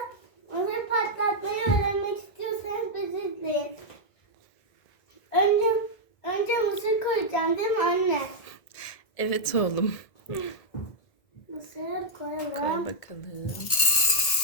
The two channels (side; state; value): right; late; 1.8 ms